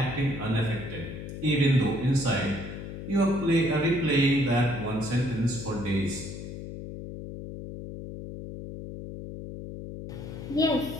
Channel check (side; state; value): left; noise; hum, 9 dB below the sound